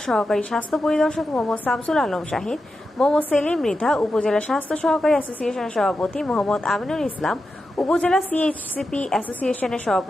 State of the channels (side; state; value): both; normal; correlation 0.89